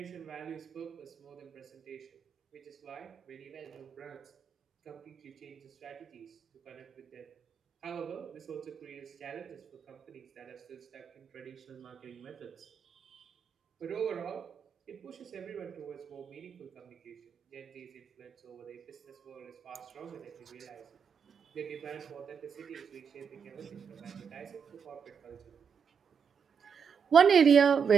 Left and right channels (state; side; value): quieter; left; 6.7 dB